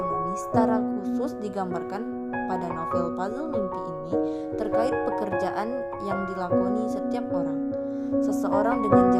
secara khusus digambarkan pada novel Puzzle Mimpi ini terkait pekerjaan yang dilakoni setiap orang. Seseorang dengan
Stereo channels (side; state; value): both; identical; correlation 1.00